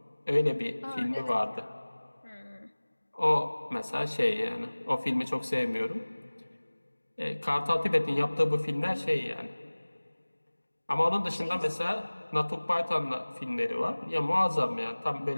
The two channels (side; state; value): both; inverted; correlation -1.00